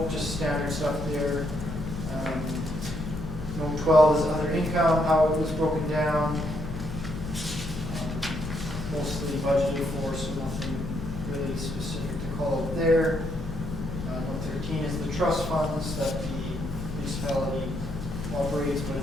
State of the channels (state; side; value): noise; left; hum, 9 dB below the sound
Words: just standard stuff there. Note 12 is other income, how it was broken down. Mostly budgeted for, so nothing really specific to call out there. Note 13 is the trust funds that the municipality operates, but